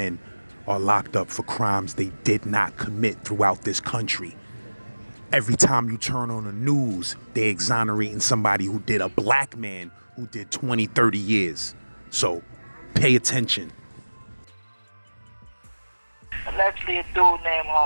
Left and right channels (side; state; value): both; inverted; correlation -1.00